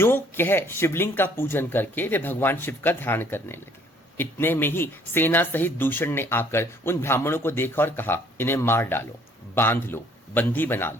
कह शिवलिंग का पूजन करके वे भगवान शिव का ध्यान करने लगे। इतने में ही सेना सहित दूषण ने आकर उन ब्राह्मणों को देखा और कहा, इन्हें मार डालो, बांध लो, बंदी बना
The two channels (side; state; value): both; normal; correlation 0.60